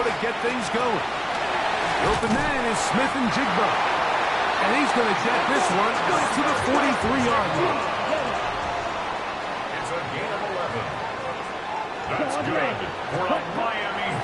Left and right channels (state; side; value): identical; both; correlation 1.00